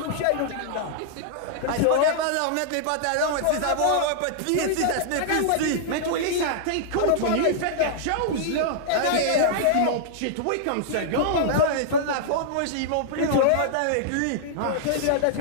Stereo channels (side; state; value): both; different; correlation -0.01